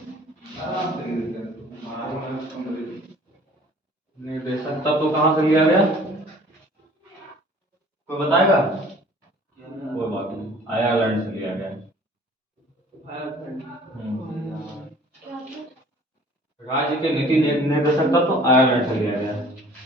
निर्देशक तत्व कहाँ से लिया गया? कोई बताएगा? कोई बात नहीं, आयरलैंड से लिया गया। राज्य के नीति निर्देशक तत्व आयरलैंड से लिया गया।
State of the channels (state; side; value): normal; both; correlation 0.51